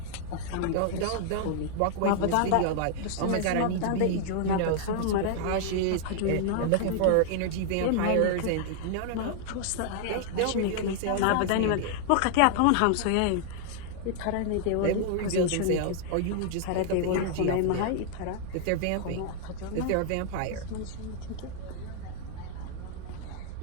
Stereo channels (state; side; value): different; both; correlation -0.01